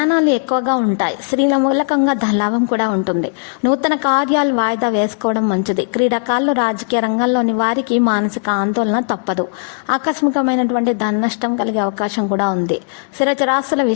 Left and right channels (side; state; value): right; silent; digital silence